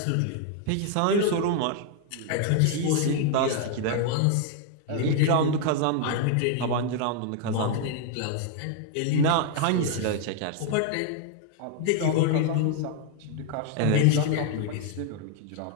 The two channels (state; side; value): different; both; correlation 0.00